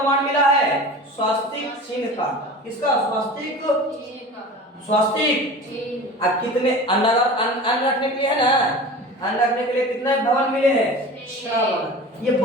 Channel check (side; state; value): both; normal; correlation 0.36